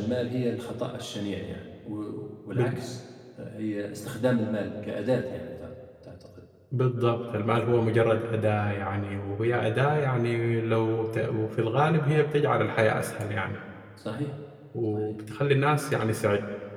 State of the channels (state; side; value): identical; both; correlation 1.00